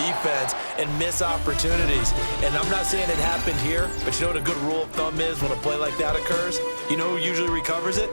and miss opportunities. And I'm not saying it happened here, but you know what a good rule of thumb is when a play like that occurs? You know who usually recovers it?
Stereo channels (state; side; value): inverted; both; correlation -1.00